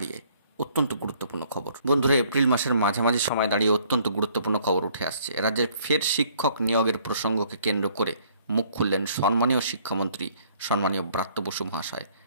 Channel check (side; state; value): both; inverted; correlation -0.61